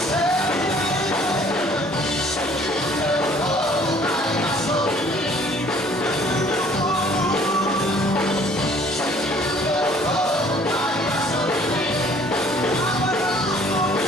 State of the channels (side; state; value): both; normal; correlation 0.56